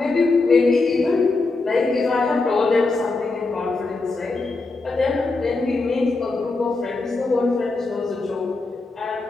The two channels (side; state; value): right; quieter; 3.6 dB